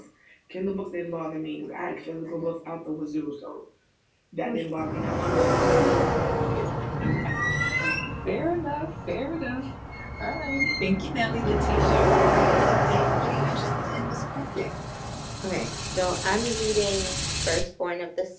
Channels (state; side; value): identical; both; correlation 1.00